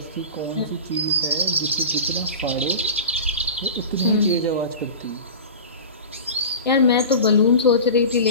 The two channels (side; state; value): both; inverted; correlation -0.33